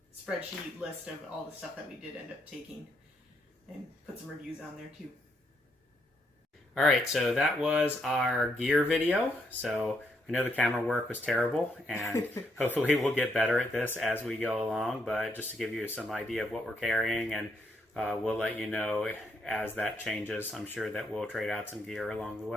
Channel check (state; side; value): normal; both; correlation 0.76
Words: spreadsheet list of all the stuff that we did end up taking and put some reviews on there too. All right, so that was our gear video. So I know the camera work was terrible, and hopefully we'll get better at this as we go along, but just to give you some idea of what we're carrying, and we'll let you know as that changes. I'm sure that we'll trade out some gear along the